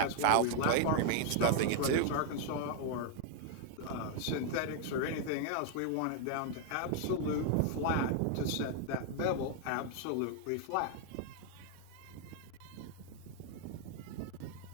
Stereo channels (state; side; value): different; both; correlation 0.00